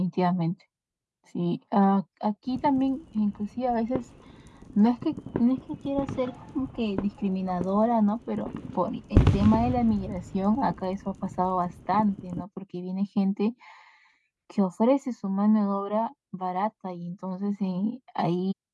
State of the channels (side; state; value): both; identical; correlation 1.00